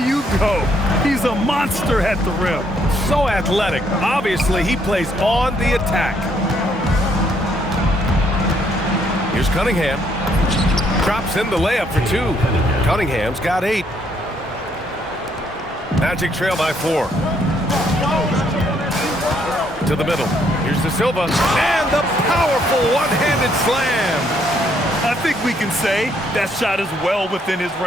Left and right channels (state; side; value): normal; both; correlation 0.70